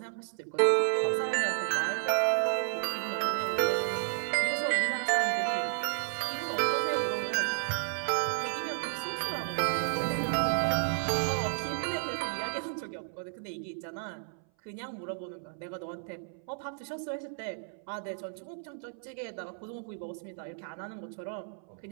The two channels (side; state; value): left; silent; 56 dB below the other